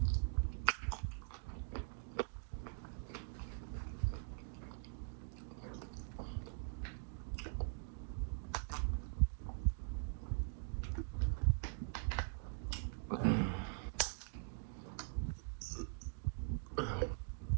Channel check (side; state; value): left; quieter; 36.5 dB